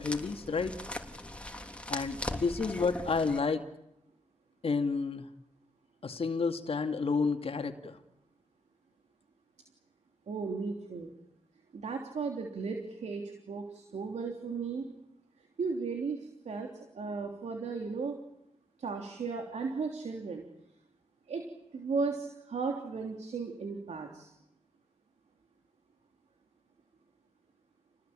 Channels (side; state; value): both; normal; correlation 0.64